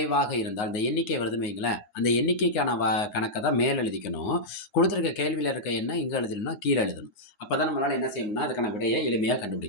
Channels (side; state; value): right; late; 9.6 ms